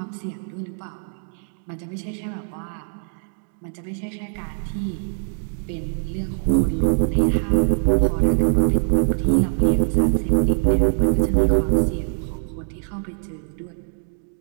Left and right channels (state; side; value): silent; left; 64 dB below the other